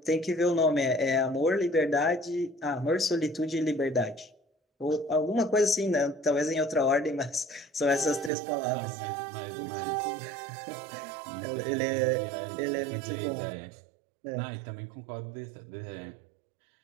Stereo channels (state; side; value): drops out; left; at 8.3 s